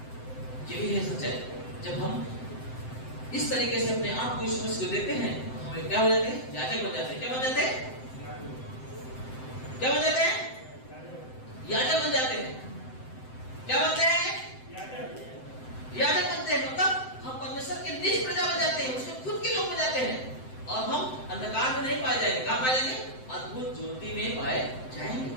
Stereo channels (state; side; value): late; right; 7.8 ms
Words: यही है सच्चाई। जब हम इस तरीके से अपने आप को यीशु मसीह को देते हैं, हमें क्या हो जाते हैं? याजक बन जाते हैं। क्या बन जाते हैं? क्या बन जाते हैं? याजक बन जाते हैं। क्या बनते हैं? याजक बनते हैं। मतलब हम परमेश्वर के निज प्रजा बन जाते हैं, उसके खुद के लोग बन जाते हैं, और हम अंधकार में नहीं पाए जाएंगे। कहां पाए जाएंगे? अद्भुत ज्योति में पाए जाएंगे।